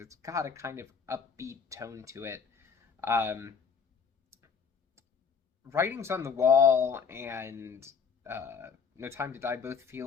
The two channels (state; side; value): quieter; right; 6.2 dB